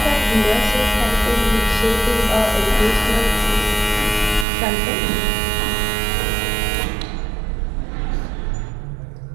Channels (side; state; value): left; drops out; at 4.5 s